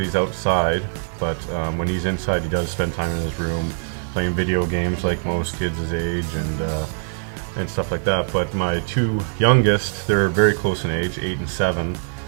outside, but when he's inside, he does spend time in his room playing video games like most kids his age and stuff like that. But my 2 youngest, they're very close in age, 8 and 7.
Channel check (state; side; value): silent; left; digital silence